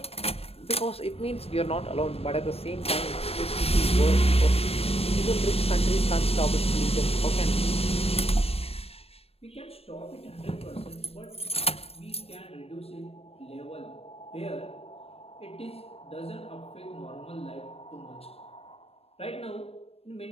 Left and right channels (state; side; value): late; right; 0.29 ms